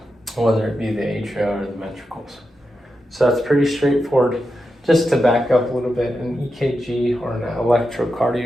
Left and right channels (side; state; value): both; normal; correlation 0.88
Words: whether it be the atria or the ventricles. So that's pretty straightforward. Just to back up a little bit, an EKG or an